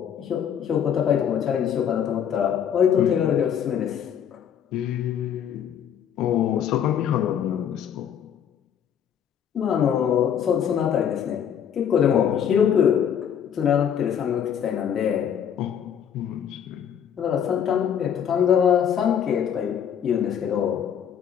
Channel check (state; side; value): quieter; right; 8.6 dB